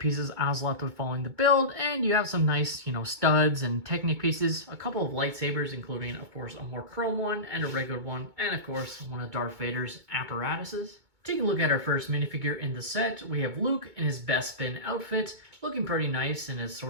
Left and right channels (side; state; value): left; late; 2.2 ms